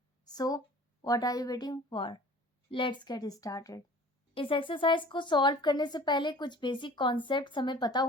So what are you waiting for? Let's get started. इस एक्सरसाइज को सॉल्व करने से पहले कुछ बेसिक कॉन्सेप्ट हमें पता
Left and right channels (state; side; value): normal; both; correlation 0.46